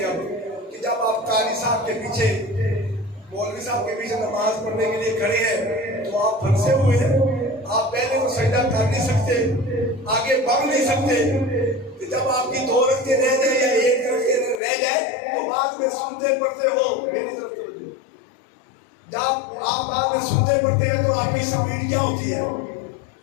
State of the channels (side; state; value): right; drops out; at 14.6 s